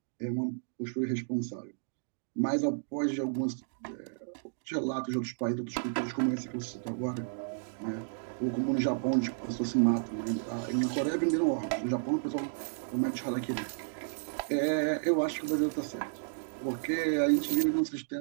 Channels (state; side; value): silent; left; digital silence